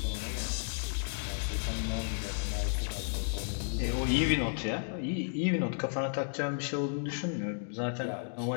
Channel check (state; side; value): silent; right; digital silence